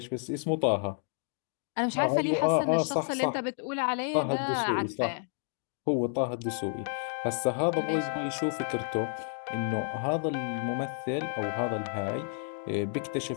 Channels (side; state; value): right; silent; 57 dB below the other